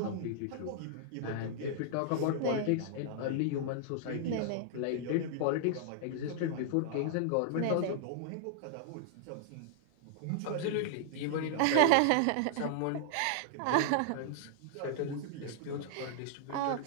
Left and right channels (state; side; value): different; both; correlation -0.01